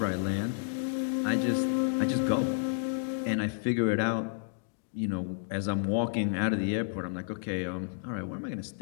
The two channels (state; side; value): silent; right; digital silence